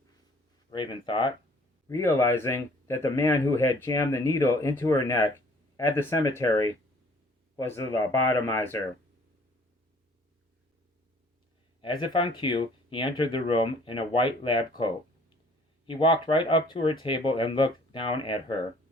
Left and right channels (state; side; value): normal; both; correlation 0.56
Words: Raven thought, realizing that the man who had jammed the needle into her neck at the cemetery was the lobotomizer. As if on cue, he entered the room in a white lab coat. He walked right up to her table and looked down at her.